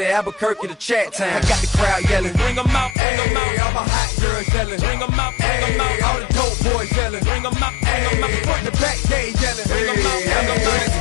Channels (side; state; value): right; drops out; at 3.0 s